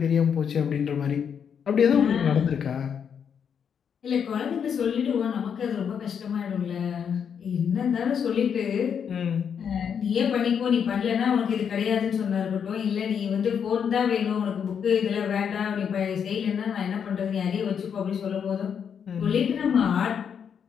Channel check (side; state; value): right; quieter; 7.5 dB